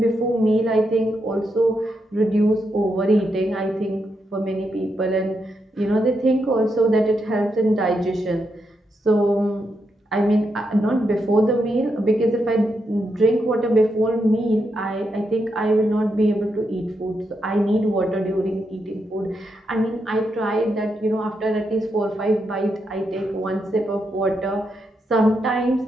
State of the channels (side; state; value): both; normal; correlation 0.82